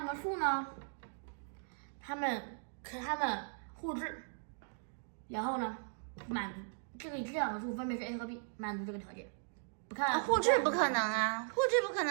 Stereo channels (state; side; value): silent; left; digital silence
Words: 个数呢，它们互质，然后呢，满足这2个数分别是 a 和 b， 满足这个条件。不看互质不可能啊，互质不可